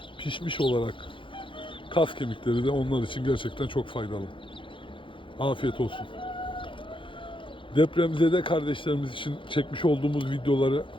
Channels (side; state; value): right; late; 0.25 ms